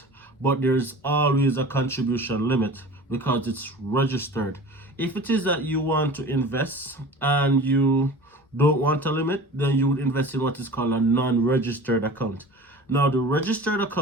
but there's always a contribution limit because it's registered. If it is that you want to invest and you don't want a limit, then you would invest in what is called a non-registered account. Now, the registered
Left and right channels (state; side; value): normal; both; correlation 0.39